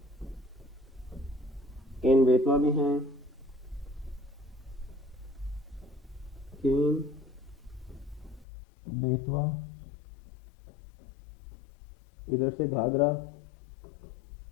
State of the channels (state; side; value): drops out; right; at 8.5 s